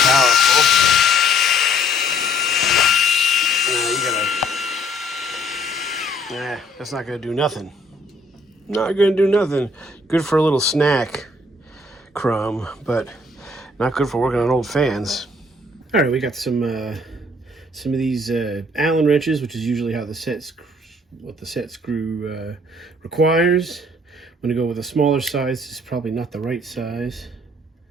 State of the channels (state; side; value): normal; both; correlation 0.60